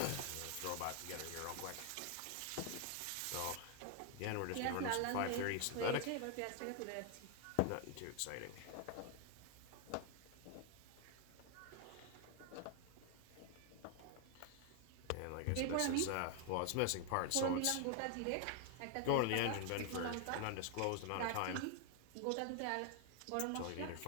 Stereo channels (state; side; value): different; both; correlation 0.00